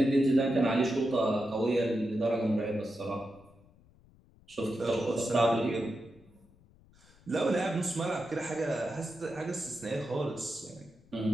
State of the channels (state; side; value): noise; left; rumble, 28 dB below the sound